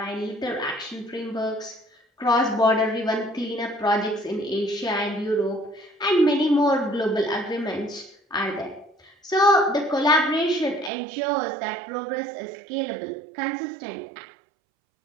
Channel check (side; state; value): left; drops out; at 10.9 s